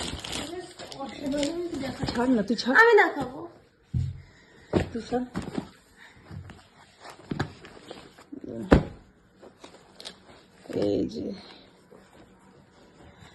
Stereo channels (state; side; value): identical; both; correlation 1.00